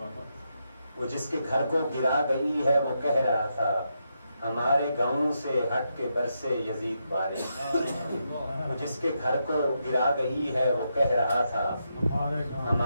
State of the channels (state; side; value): inverted; both; correlation -0.83